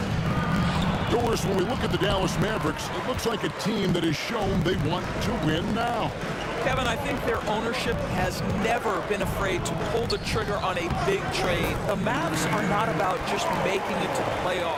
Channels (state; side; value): identical; both; correlation 1.00